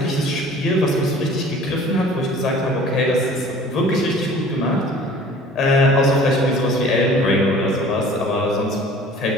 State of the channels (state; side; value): normal; both; correlation 0.47